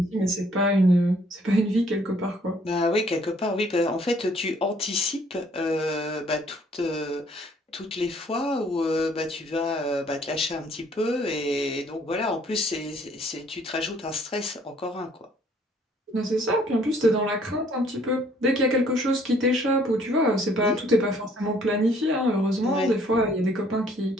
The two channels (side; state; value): both; normal; correlation 0.61